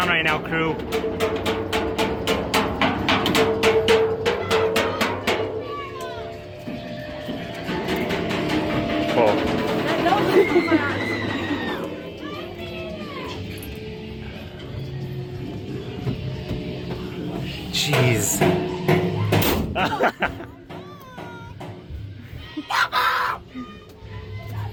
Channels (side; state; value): both; identical; correlation 1.00